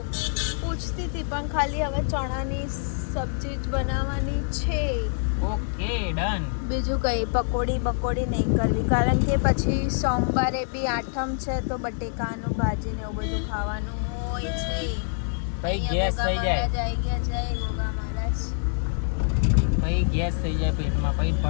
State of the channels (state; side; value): silent; right; digital silence